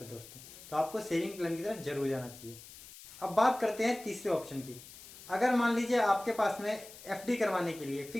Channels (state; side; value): noise; left; hiss, 17 dB below the sound